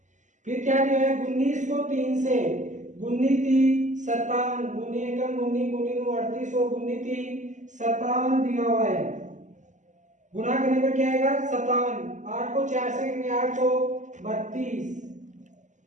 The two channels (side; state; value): left; late; 0.35 ms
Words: फिर क्या दिया है 19 को 3 से गुनी 57, गुनी एकम गुनी गुनी 38 और गुनी 57 दिया हुआ है। गुना करने पर क्या आएगा 57। 8 को 4 से करेंगे 832,